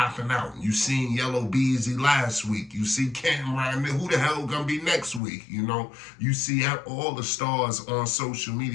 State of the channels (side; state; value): right; drops out; at 5.2 s